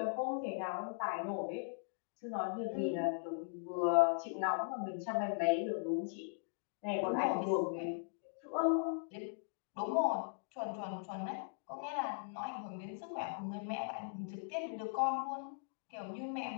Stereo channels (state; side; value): silent; right; digital silence